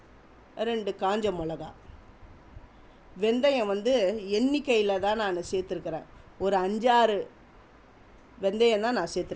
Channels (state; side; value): identical; both; correlation 1.00